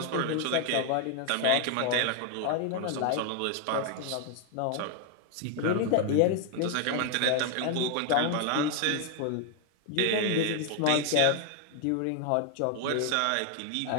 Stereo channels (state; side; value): different; both; correlation 0.01